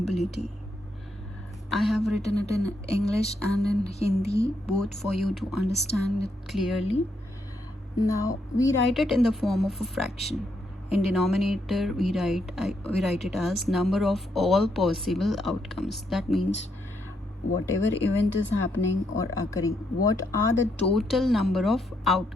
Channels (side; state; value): both; normal; correlation 0.77